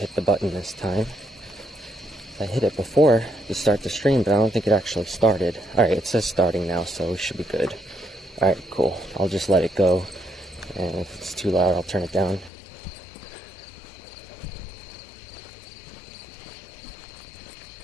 the button this time. I hit it before to start the stream, but I don't think it actually started. Alright, it says starting now, so we should be good. Alright, cool. I'll just let it go. And if it's too loud, I'll turn it down.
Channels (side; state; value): right; drops out; at 12.5 s